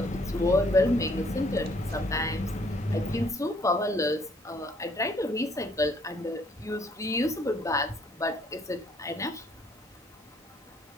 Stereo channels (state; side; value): normal; both; correlation 0.64